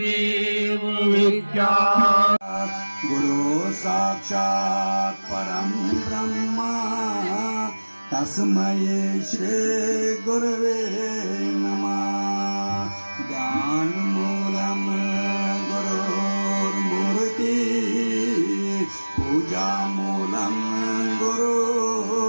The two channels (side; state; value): both; inverted; correlation -1.00